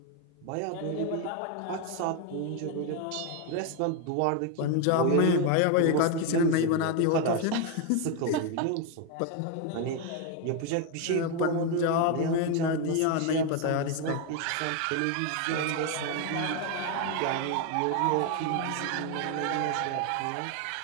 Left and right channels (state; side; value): different; both; correlation 0.01